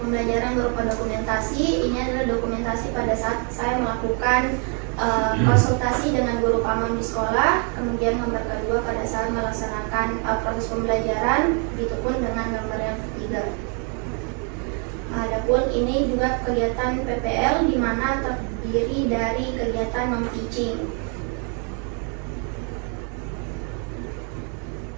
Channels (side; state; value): left; quieter; 38.0 dB